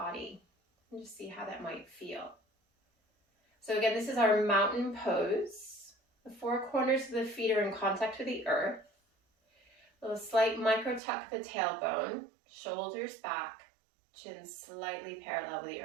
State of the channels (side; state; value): left; drops out; at 11.0 s